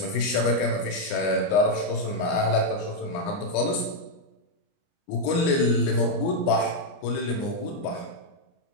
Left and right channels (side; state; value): right; late; 29 ms